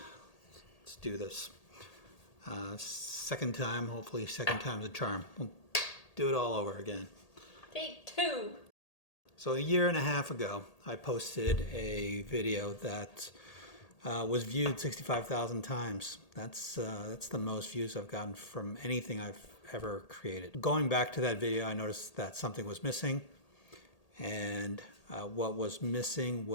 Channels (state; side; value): late; right; 1.8 ms